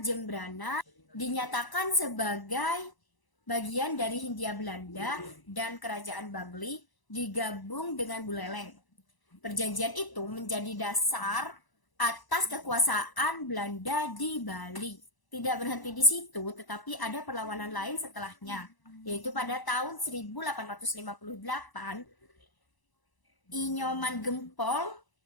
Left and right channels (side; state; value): right; late; 1.0 ms